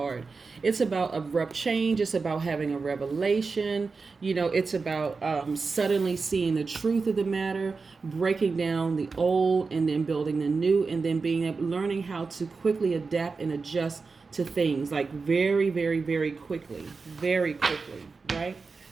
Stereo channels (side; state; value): left; quieter; 4.5 dB